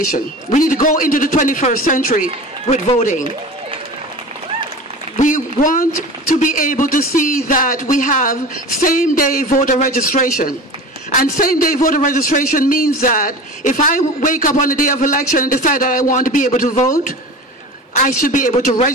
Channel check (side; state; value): both; normal; correlation 0.34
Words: We need to go into the 21st century with voting. We want to be able to see that we have same-day voter registration. And same-day voter registration means that if I wake up on the day of election and decide that I want to be able to vote, I should be able to